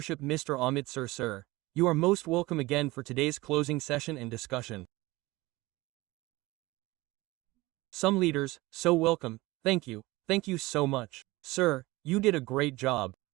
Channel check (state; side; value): quieter; left; 20.6 dB